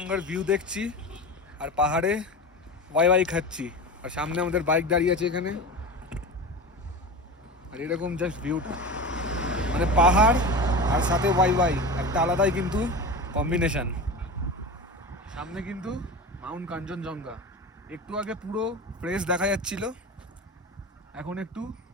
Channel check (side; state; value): both; normal; correlation 0.28